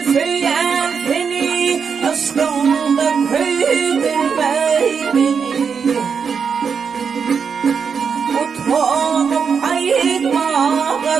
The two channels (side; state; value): left; quieter; 6.2 dB